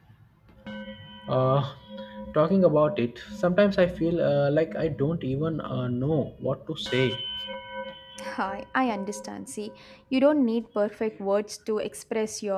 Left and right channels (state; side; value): identical; both; correlation 1.00